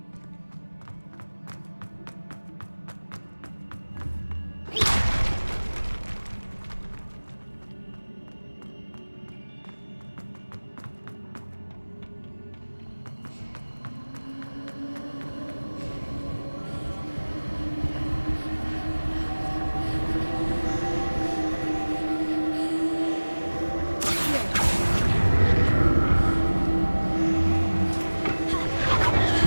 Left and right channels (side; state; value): both; inverted; correlation -1.00